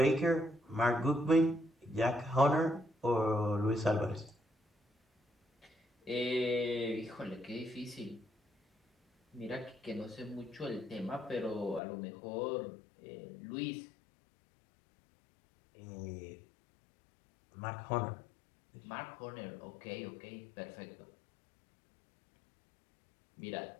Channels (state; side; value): drops out; right; at 11.8 s